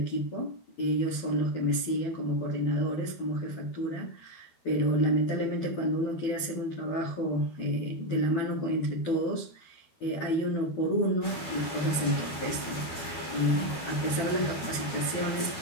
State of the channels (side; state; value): right; late; 12 ms